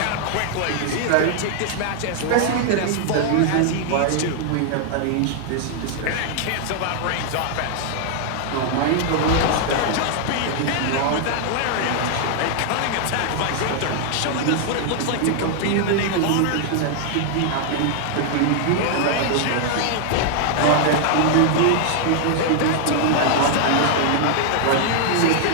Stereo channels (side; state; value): both; different; correlation 0.00